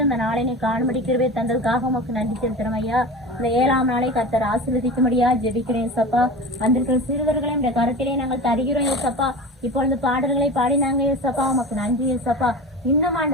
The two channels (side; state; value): both; normal; correlation 0.31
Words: இந்த நாளை நீ காணும்படி கிருபை தந்ததுக்காக உமக்கு நன்றி செலுத்துறோம் ஐயா. இந்த 7ஆம் நாளை கர்த்தர் ஆசீர்வதிக்கும்படியா ஜெபிக்கிறேன் சப்பா. வந்திருக்கிற சிறுவர்களை இந்த கருத்திலே நாங்கள் தருகிறோம் ஏசப்பா. இப்பொழுது பாடல்களை பாடினாங்க ஏசப்பா, உமக்கு நன்றி ஏசப்பா. இன்னும்